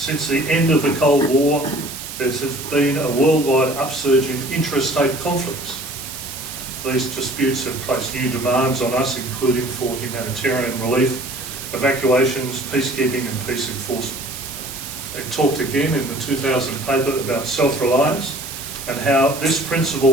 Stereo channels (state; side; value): noise; right; hiss, 10 dB below the sound